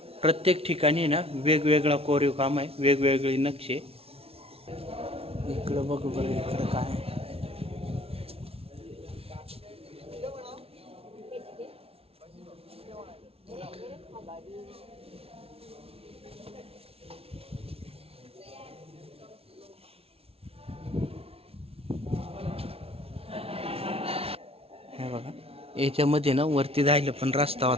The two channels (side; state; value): left; late; 0.28 ms